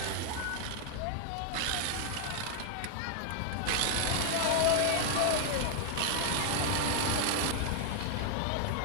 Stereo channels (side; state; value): both; different; correlation 0.00